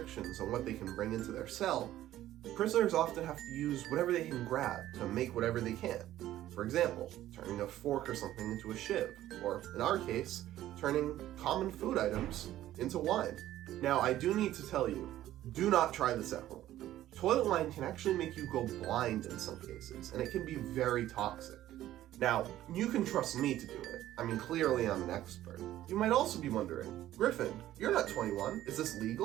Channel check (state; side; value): quieter; left; 13.6 dB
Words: on what they can bring into their cell, prisoners often have to use whatever they can grab to make whatever they can. For example, turning a fork or something into a shiv, or in our case, turning common food items into wine. Now, I do need to tell you, do not try this at home. Toilet wine can actually make you go blind in some cases, and it can be very toxic. Now, you can trust me to do it. I mean, clearly I'm an expert. You might also be wondering, Griffin, you're not 21. Is this